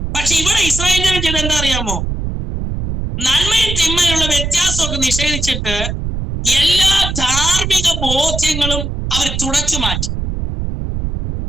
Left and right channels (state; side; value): noise; right; rumble, 4 dB below the sound